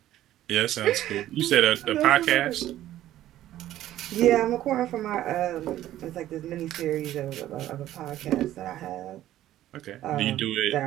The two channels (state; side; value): quieter; left; 13.4 dB